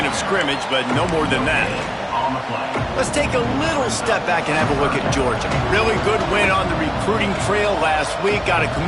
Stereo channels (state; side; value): identical; both; correlation 1.00